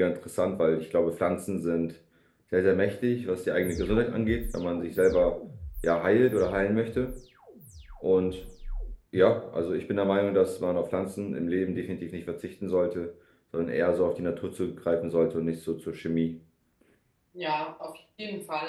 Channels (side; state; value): both; identical; correlation 1.00